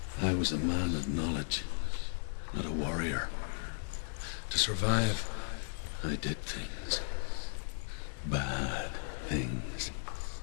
I was a man of knowledge, not a warrior. To survive, I did things. Bad things.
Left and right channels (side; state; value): right; silent; 54 dB below the other